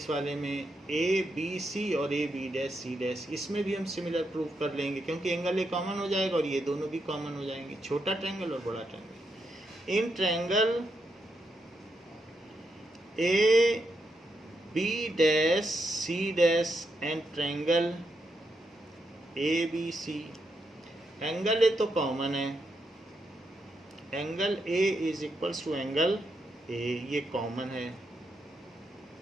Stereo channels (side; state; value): both; normal; correlation 0.82